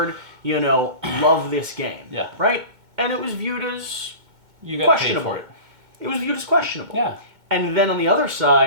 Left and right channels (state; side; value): late; left; 2.2 ms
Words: love this game. Yeah. Right? And it was viewed as You got questionable. paid for it. It was viewed as questionable. Yeah. And then on the other